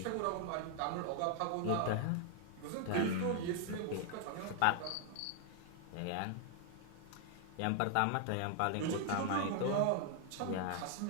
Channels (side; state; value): both; different; correlation 0.00